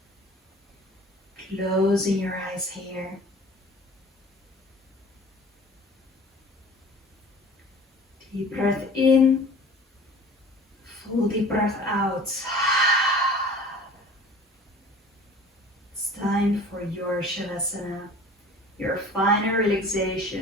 Closing your eyes here. Deep breath in, full deep breath out. It's time for your Shavasana, your final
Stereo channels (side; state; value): both; normal; correlation 0.45